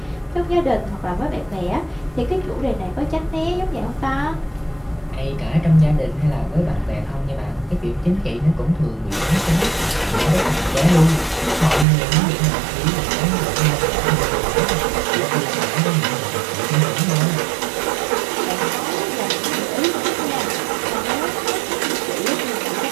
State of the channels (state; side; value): drops out; left; at 11.9 s